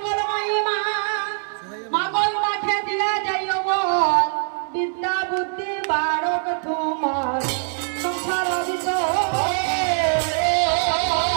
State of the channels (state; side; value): silent; left; digital silence